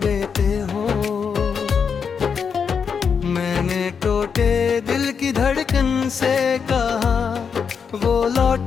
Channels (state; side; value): quieter; right; 6.4 dB